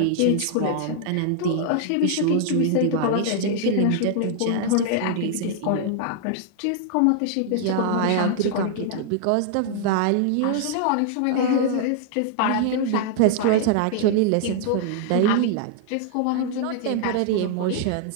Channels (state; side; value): different; both; correlation -0.01